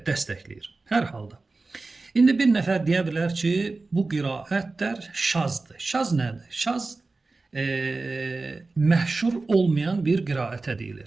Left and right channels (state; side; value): quieter; left; 3.6 dB